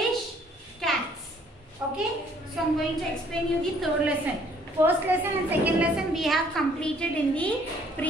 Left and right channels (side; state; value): both; normal; correlation 0.61